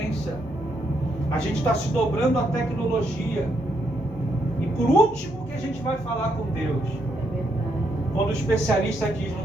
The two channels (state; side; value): normal; both; correlation 0.76